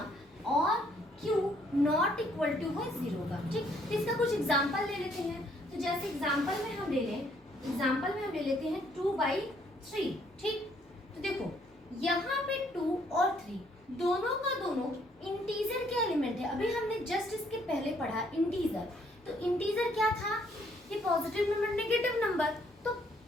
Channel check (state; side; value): normal; both; correlation 0.67